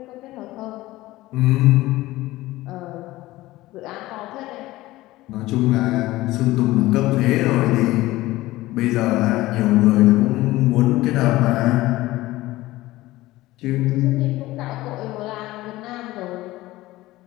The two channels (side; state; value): right; quieter; 17.8 dB